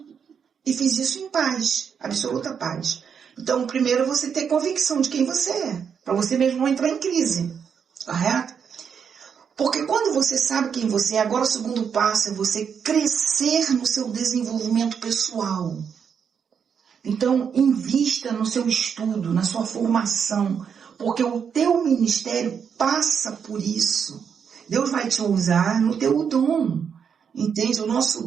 E fiz isso em paz, absoluta paz. Então, primeiro você ter convicção de quem você é, para você mesmo não entrar em crise, correto? Porque quando você sabe quem você é, agora o segundo passo é você crescer no seu desenvolvimento pessoal. Então, invista no seu estudo, na sua formação, porque o teu ministério passa por isso. Deus vai te usar no teu dom, entende? O nosso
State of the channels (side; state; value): left; quieter; 7.1 dB